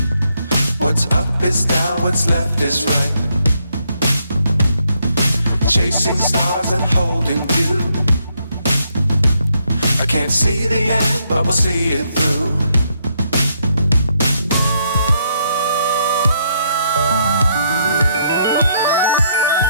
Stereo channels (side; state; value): both; inverted; correlation -0.75